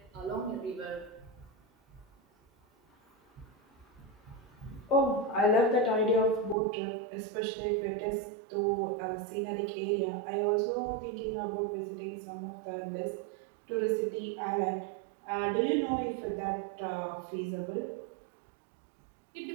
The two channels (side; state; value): left; drops out; at 6.6 s